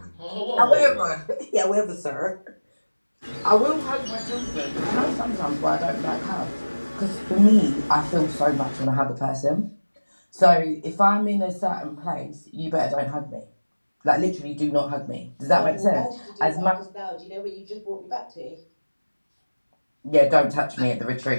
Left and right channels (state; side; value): inverted; both; correlation -1.00